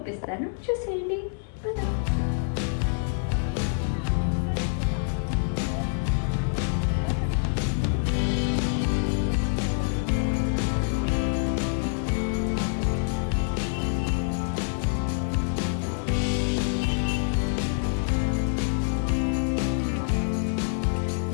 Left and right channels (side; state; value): right; silent; 61 dB below the other